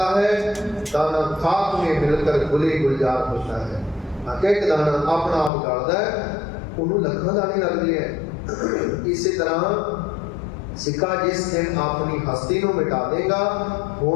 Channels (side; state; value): right; drops out; at 5.5 s